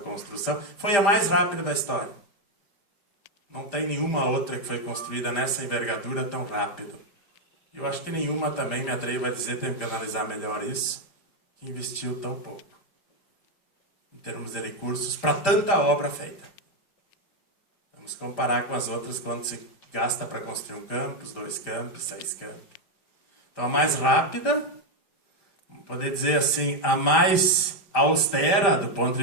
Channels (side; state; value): right; late; 5.1 ms